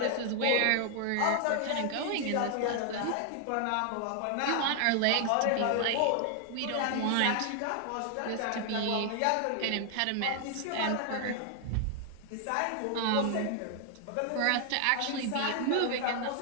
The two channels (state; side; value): different; both; correlation 0.00